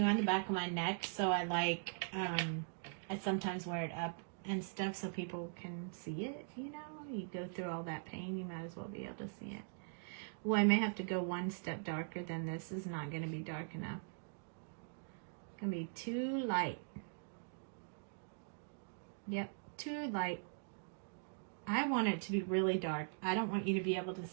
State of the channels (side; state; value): left; silent; digital silence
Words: on the back of my neck. So I like, I sometimes wear it up and stuff so people can see it, you know. You go through all that pain, you might as well be able to see it. Well, I may have to go one step darker than this. This is not going to be dark enough. It's going to be too light. Yep, too light. I want it to be really dark. I don't want you to be able to